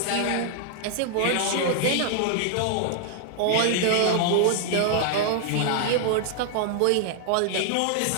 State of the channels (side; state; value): both; different; correlation 0.00